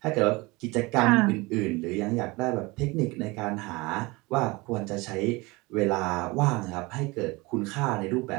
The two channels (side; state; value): left; quieter; 23.9 dB